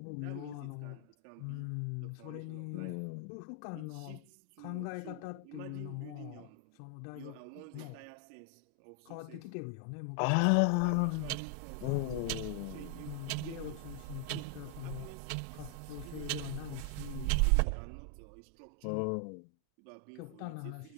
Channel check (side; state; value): both; different; correlation 0.00